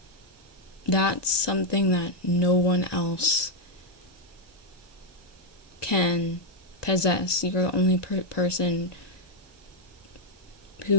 that's something that no one else can possess. You're the only person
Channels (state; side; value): late; right; 1.9 ms